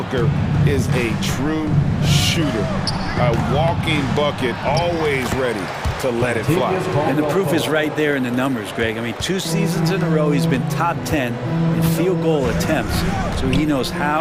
is a true shooter. A walking bucket, always ready to let it fly. And the proof is right there in the numbers, Greg. I mean, 2 seasons in a row, he's been top 10 in field goal attempts. So he knows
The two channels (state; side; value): identical; both; correlation 1.00